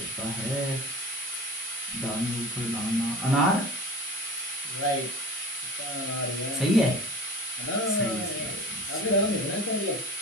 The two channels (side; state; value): both; normal; correlation 0.41